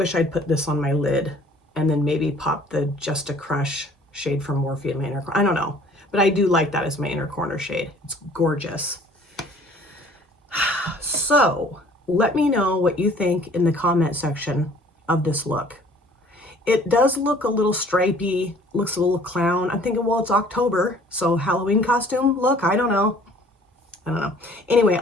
I'd put this on my lid and then maybe pop the Just a Crush shade from Morphe in my inner corner. I don't know, but I do like that as my inner corner shade. It's gorgeous. So let me know what you think in the comment section of this look. It does look a little stripey, looks a little clown. I'm thinking, well, it's October, so Halloween costume look, I don't know. Anyway,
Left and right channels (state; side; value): normal; both; correlation 0.54